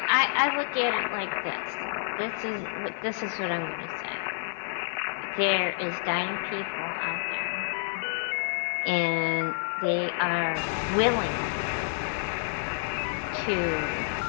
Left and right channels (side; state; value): right; silent; digital silence